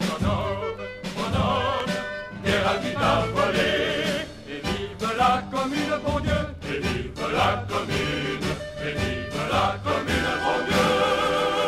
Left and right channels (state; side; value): identical; both; correlation 1.00